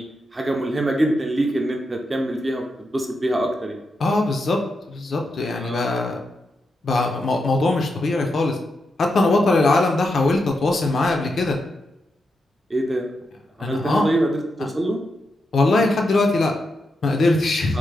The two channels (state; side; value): normal; both; correlation 0.85